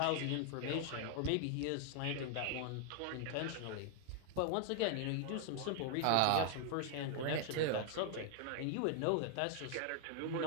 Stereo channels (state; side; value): different; both; correlation 0.00